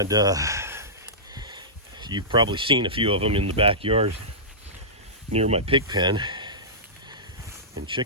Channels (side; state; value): both; normal; correlation -0.18